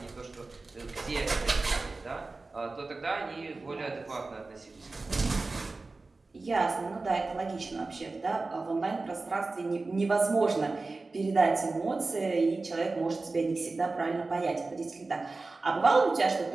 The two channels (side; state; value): left; quieter; 3.6 dB